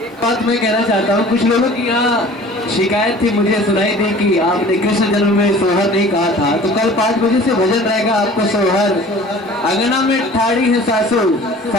एक बात मैं कहना चाहता हूँ, कुछ लोगों की यहाँ शिकायत थी, मुझे सुनाई दी कि आपने कृष्ण जन्म में सोहर नहीं कहा था। तो कल 5 बजे से भजन रहेगा आपको सोहर। अंगना में ठाड़ी है सासू,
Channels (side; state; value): both; normal; correlation 0.45